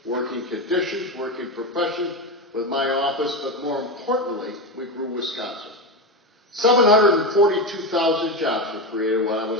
working conditions, working profession with my office, but more importantly, we grew Wisconsin. 742,000 jobs were created when I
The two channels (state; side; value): normal; both; correlation 0.16